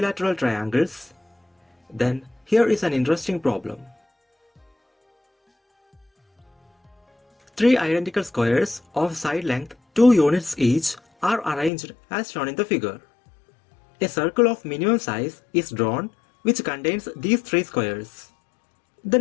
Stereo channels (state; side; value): drops out; right; at 11.7 s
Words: triangles, then here is an interesting problem. Three identical squares of side length 2 units each are arranged as shown in the figure. A circle of minimum size is drawn which contains these three squares.